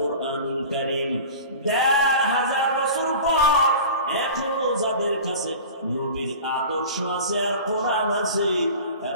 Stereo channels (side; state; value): both; inverted; correlation -0.37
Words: কারীম। ১৫০০ বছর পর এখনো যাদের কাছে নবীর আদর্শ আছে আর কোরআন আছে,